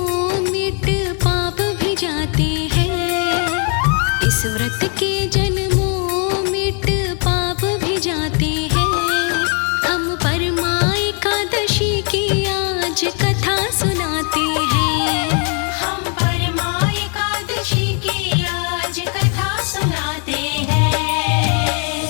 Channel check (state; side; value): quieter; right; 39.5 dB